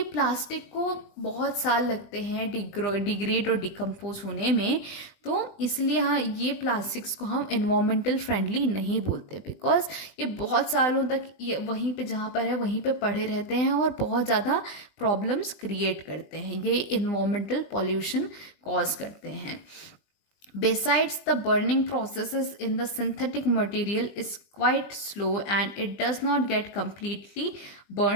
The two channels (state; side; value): late; right; 20 ms